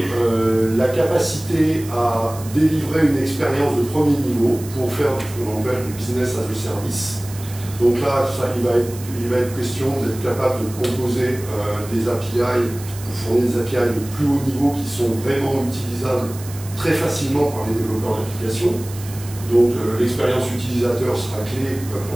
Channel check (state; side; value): noise; right; hiss, 16 dB below the sound